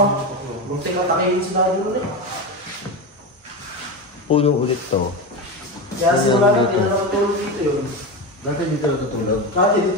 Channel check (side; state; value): both; normal; correlation 0.19